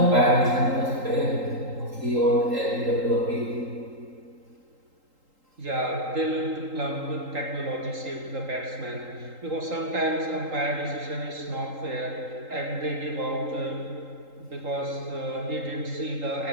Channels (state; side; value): late; left; 3.8 ms